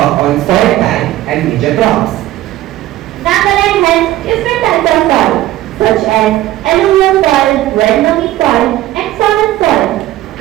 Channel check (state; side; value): quieter; left; 14.9 dB